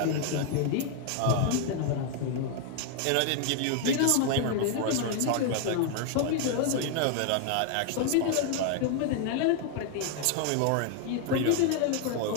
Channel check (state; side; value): different; both; correlation 0.00